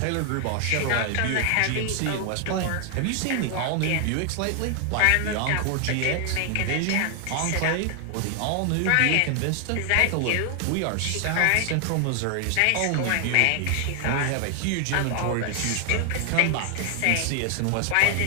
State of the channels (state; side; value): different; both; correlation 0.00